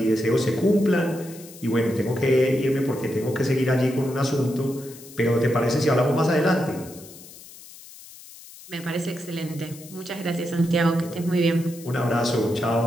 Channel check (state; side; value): noise; left; hiss, 18 dB below the sound